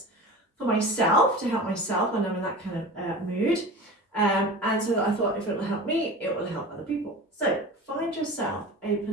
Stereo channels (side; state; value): both; normal; correlation 0.34